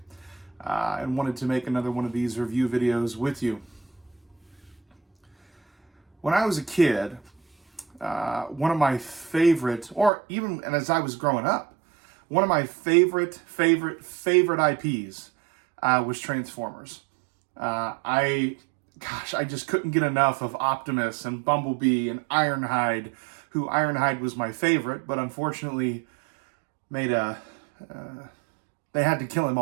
and wanted to make another one of these review videos with you. When I was a kid, one of my favorite, and as I was growing up, one of my favorite IPs was Transformers. I just couldn't get enough of Optimus and Bumblebee and Ironhide, who Ironhide was my favorite, but unfortunately they had to kill him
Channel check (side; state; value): left; drops out; at 10.1 s